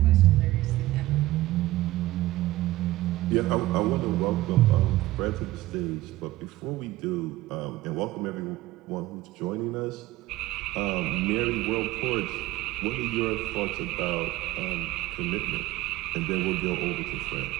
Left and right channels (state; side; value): quieter; left; 17.1 dB